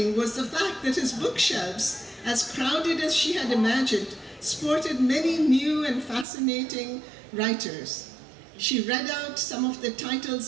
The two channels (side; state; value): left; drops out; at 6.2 s